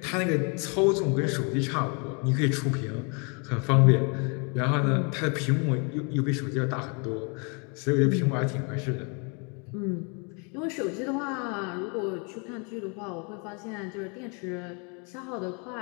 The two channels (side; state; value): right; quieter; 34.7 dB